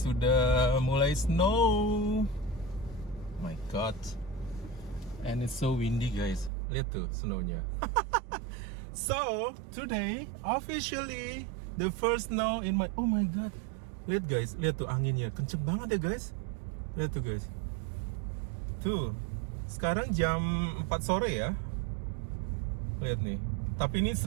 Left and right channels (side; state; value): left; drops out; at 6.5 s